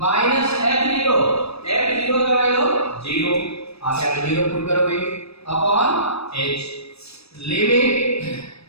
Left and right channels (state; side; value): late; right; 0.78 ms